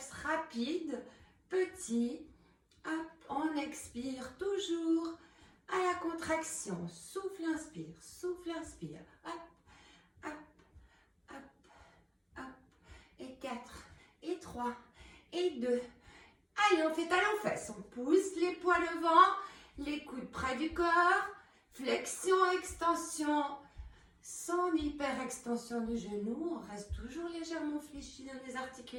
rapides, petits. Hop, on expire toujours à la contraction. Souffle, inspire, souffle, inspire. Hop, hop, hop, hop. Et 4, et 3, et 2. Allez, on fait talons-fesses. On pousse les poids devant, les coudes près du corps. Flexion, extension, sans hyper-extension du genou. On reste toujours légèrement fléchi dans les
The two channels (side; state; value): both; identical; correlation 1.00